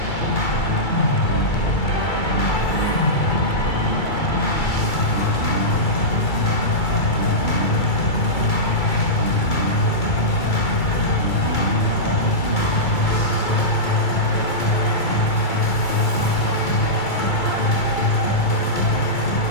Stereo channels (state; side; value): late; right; 2.3 ms